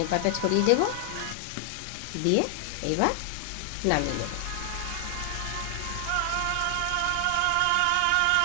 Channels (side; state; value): both; different; correlation 0.00